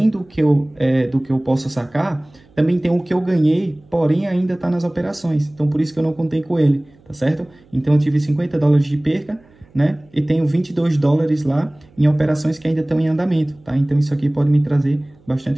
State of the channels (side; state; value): right; noise; hum, 30 dB below the sound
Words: do que eu posso sacar, também tem o que eu ganhei, porém ainda está nas operações, então por isso que eu não contei com ele, tá certo? Então eu tive 50 dólares de perca, né? E tenho 22 dólares lá em operações que ainda estão em andamento, tá? Então isso aqui pode me trazer